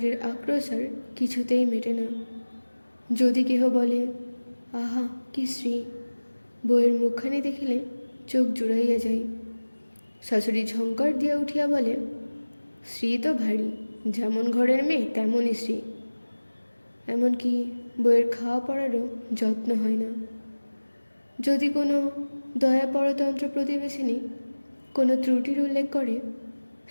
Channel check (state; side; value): inverted; both; correlation -1.00